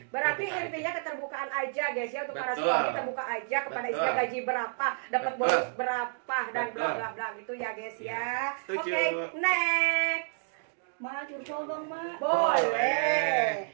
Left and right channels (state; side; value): silent; left; digital silence